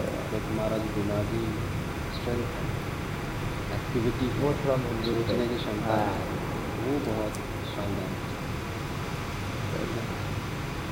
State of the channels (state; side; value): identical; both; correlation 1.00